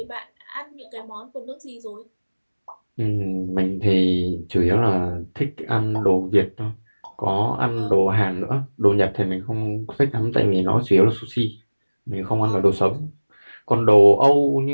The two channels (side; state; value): both; inverted; correlation -1.00